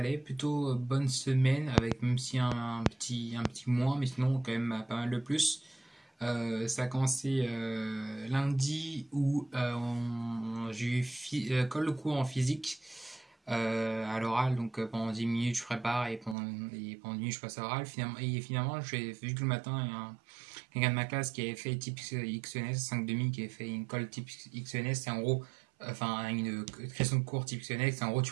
plutôt bonne semaine, avec même si un petit mois, mais sinon quand même pas mal de plus. Ça a commencé lundi où j'ai eu colle de cours en physique à l'oral, donc pendant 10 minutes je prépare et pendant 10 minutes je passe à l'oral. Finalement, j'ai vu que le matin, il y a quelqu'un de ma classe qui avait fait type XENS, 5 demi, qui avait fait une colle type XENS, c'est en gros, enfin une question de cours type XENS, c'est en gros tu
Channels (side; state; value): left; drops out; at 16.4 s